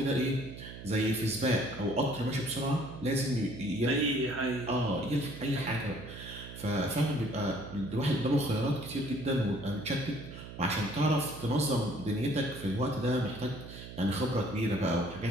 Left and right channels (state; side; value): noise; right; hum, 12 dB below the sound